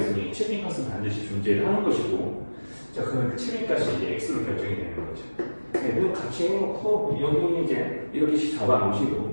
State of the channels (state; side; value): inverted; both; correlation -1.00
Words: 7인까지는 반드시 존재를 하는 것이고, 자 그러면 그 7인까지 이제 x로 결정이 되는 거죠. 네, 그럼 같이 해놓고 여기 이제 이렇게